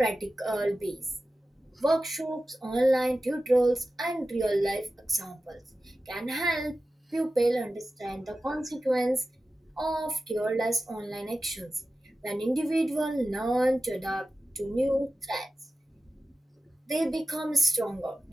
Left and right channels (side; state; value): both; normal; correlation 0.94